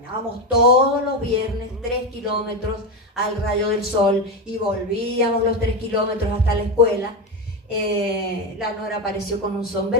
todos los viernes 3 kilómetros al rayo del sol y volvíamos los 3 kilómetros hasta la escuela. La Nora apareció con un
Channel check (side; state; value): both; normal; correlation 0.14